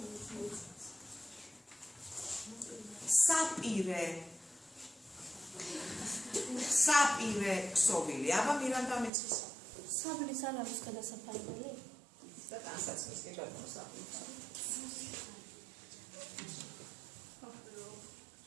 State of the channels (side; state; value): left; drops out; at 9.1 s